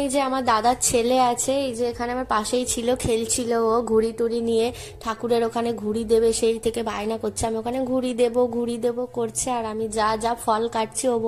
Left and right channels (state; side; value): identical; both; correlation 1.00